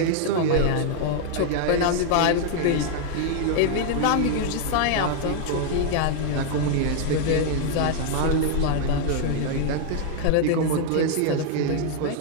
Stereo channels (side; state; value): both; different; correlation 0.00